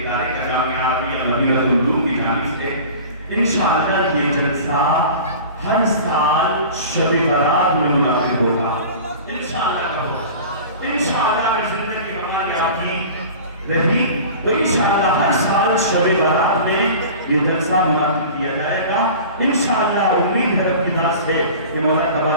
ادارے کا جامعہ عربیہ مدینہ العلوم کی جانب سے انشاءاللہ یہ جلسہ ہر سال شب برات میں منعقد ہوگا. انشاءاللہ اگر زندگی ہماری آپ کی رہی تو انشاءاللہ ہر سال شب برات میں یہ جلسہ منعقد کیا جائے گا. انشاءاللہ امید ہے رب کی ذات سے کہ مولا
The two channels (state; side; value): inverted; both; correlation -0.39